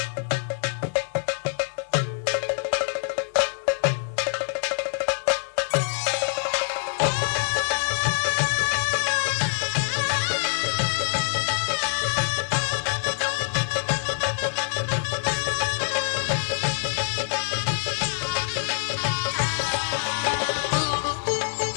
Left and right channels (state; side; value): silent; right; digital silence